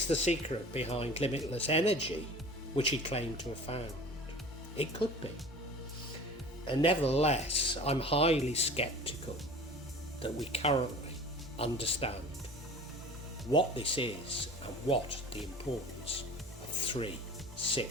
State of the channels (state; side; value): normal; both; correlation 0.40